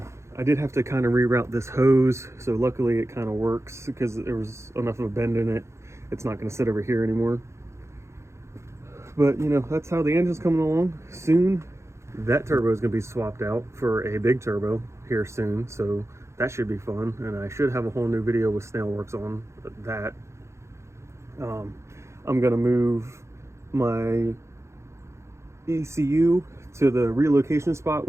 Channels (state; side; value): late; left; 0.14 ms